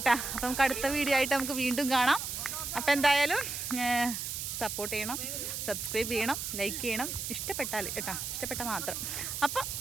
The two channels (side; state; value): right; noise; hiss, 4 dB below the sound